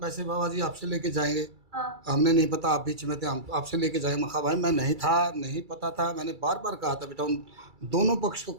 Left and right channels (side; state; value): left; late; 2.3 ms